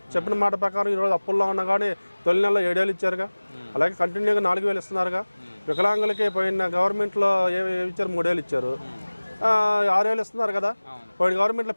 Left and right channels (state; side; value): inverted; both; correlation -1.00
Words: చెప్పిన మాట ప్రకారం ఈరోజు అప్పుల్లో ఉన్నా కానీ తొలి నెలలో 7,000 ఇచ్చారుగా. అలాగే కంటిన్యూగా 4,000 ఇస్తున్నారుగా. వికలాంగులకి పోయిన గవర్నమెంట్లో ఏమి ఇచ్చారు? 3,000 ఇచ్చారు. 6,000 ఇస్తున్నారు కదా. పోయిన గవర్నమెంట్లో